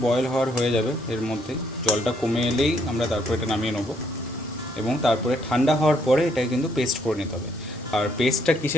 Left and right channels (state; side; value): normal; both; correlation 0.70